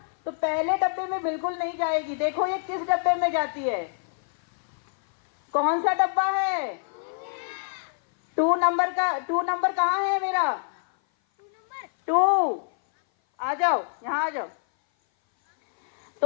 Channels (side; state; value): right; silent; 57 dB below the other